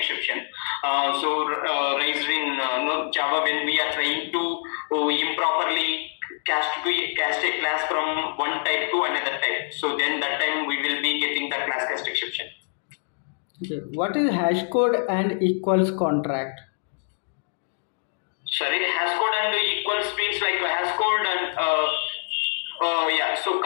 Raised in Java when we are trying to improperly cast a class from one type to another type. So then that time we will be getting the class cast exception. Okay. What is hash code and equals contract? Sorry, hash code and equals means like a hash code and yeah. So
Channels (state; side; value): silent; right; digital silence